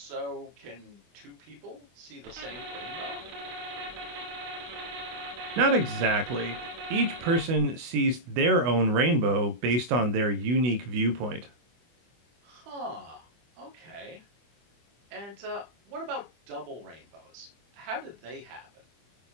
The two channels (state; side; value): late; left; 24 ms